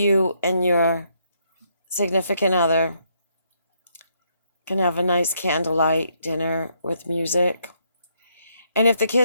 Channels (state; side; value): inverted; both; correlation -0.74